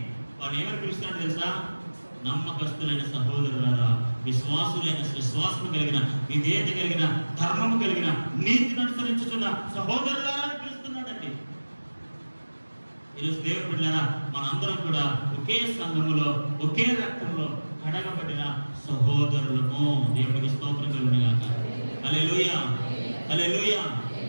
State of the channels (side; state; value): both; inverted; correlation -1.00